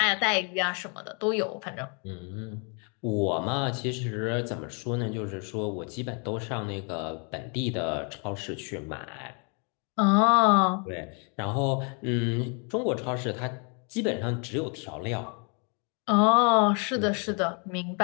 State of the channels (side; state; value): right; quieter; 36.9 dB